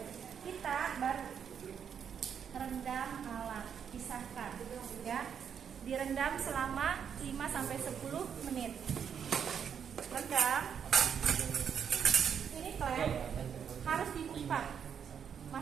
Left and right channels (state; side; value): quieter; left; 7.7 dB